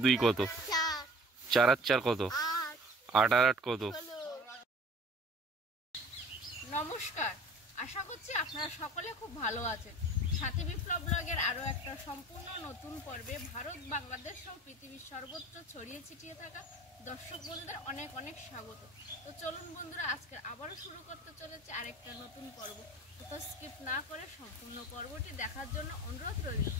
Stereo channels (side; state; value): both; normal; correlation 0.45